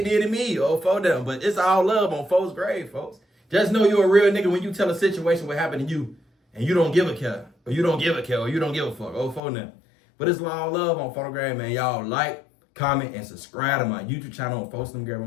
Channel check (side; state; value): right; drops out; at 9.4 s